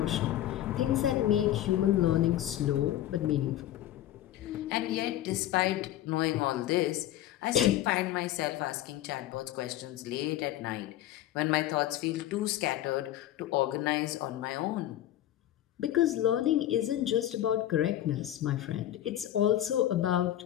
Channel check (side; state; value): right; quieter; 13.0 dB